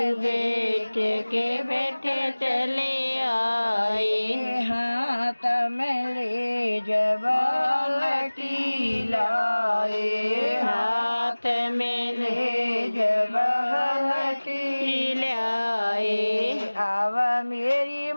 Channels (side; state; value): both; inverted; correlation -1.00